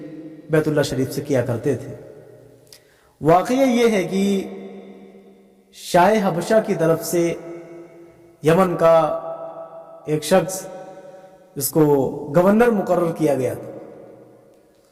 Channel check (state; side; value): identical; both; correlation 1.00